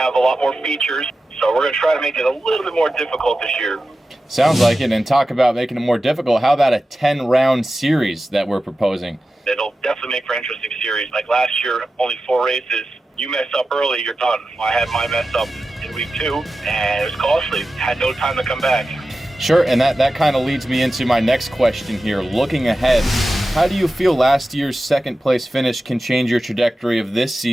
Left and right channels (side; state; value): both; normal; correlation 0.93